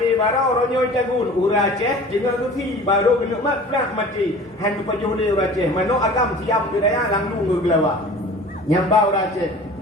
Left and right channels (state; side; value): normal; both; correlation 0.43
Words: baru ronyo jagun ura Aceh dengan gusi baru genuk mat prak mati han tu pajuh le ura Aceh manok agam siam budaya langdung ke gelawa nyambau ura Aceh